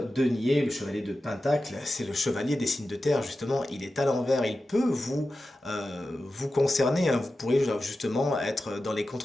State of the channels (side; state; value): both; normal; correlation 0.93